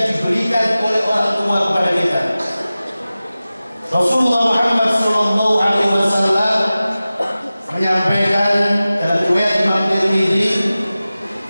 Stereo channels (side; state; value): both; inverted; correlation -0.96